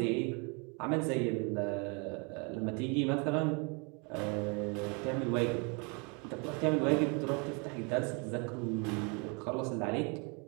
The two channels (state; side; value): quieter; left; 32.6 dB